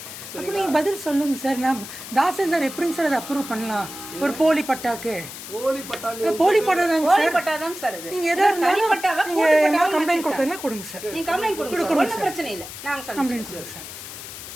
அப்போ நீங்கள் பதில் சொல்லுங்க சார். நான் தாசில்தார் எப்படிங்க சார் அதை அப்ரூவ் பண்ணலாம்? ஒரு போலி பட்டாக்கு போலி பட்டா தாங்க சார். நீங்க எதா இருந்தாலும் நீங்க கம்ப்ளைண்ட் கொடுத்தா கொடுங்க சார். நீங்க கம்ப்ளைண்ட் கொடுங்க. ஒண்ணும் பிரச்சனை இல்ல. நாங்க கம்ப்ளைண்ட் கொடுங்க சார்.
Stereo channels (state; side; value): noise; left; hiss, 12 dB below the sound